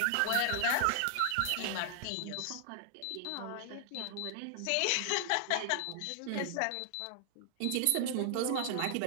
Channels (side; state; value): both; different; correlation 0.00